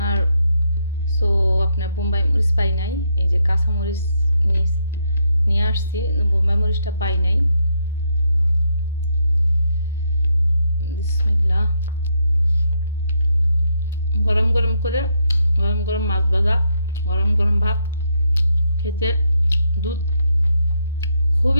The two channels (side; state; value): both; inverted; correlation -0.77